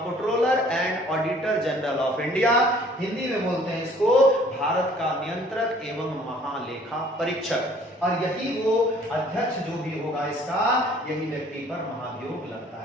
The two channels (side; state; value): both; normal; correlation 0.55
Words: and auditor general of India. Hindi में बोलते हैं इसको भारत का नियंत्रक एवं महालेखा परीक्षक। और यही वो अध्यक्ष जो भी होगा इसका, यही व्यक्ति पर महाभियोग लगता